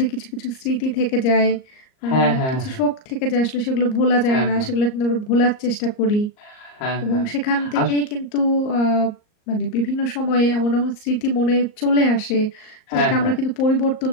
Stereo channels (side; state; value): right; late; 38 ms